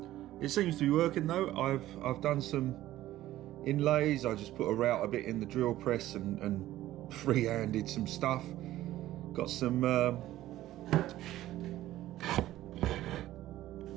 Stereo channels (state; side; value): quieter; left; 14.7 dB